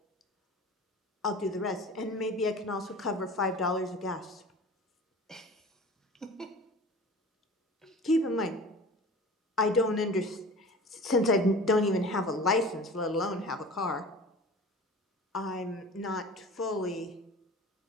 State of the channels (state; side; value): normal; both; correlation 0.40